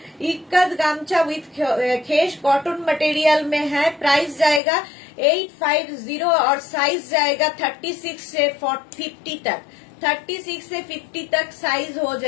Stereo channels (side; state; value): right; drops out; at 4.6 s